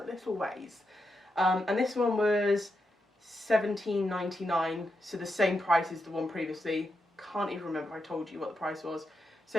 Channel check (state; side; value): normal; both; correlation 0.85